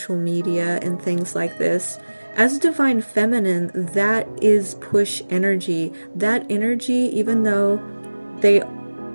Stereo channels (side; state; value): both; inverted; correlation -1.00